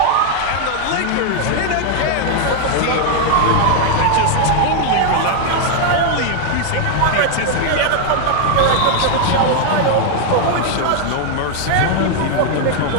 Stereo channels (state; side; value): different; both; correlation 0.00